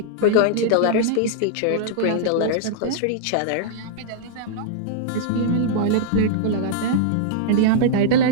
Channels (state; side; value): different; both; correlation -0.01